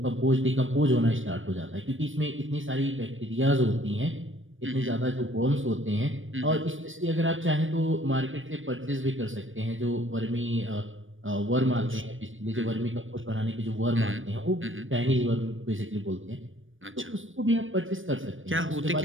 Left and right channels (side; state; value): left; late; 0.57 ms